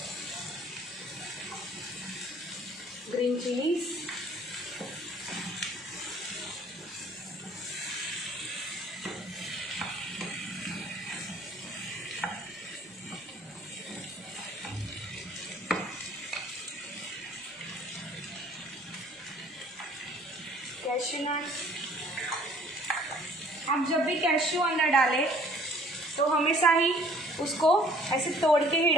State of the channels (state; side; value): normal; both; correlation 0.56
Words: green chillies, cashew nuts. आप जब भी कैश्यू अंदर डालें तो हमेशा ही उसको ऐसे तोड़ के ही